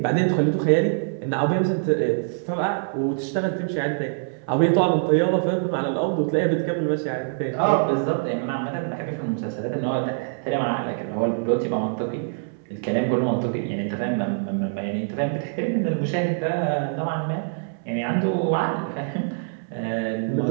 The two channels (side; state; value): left; silent; digital silence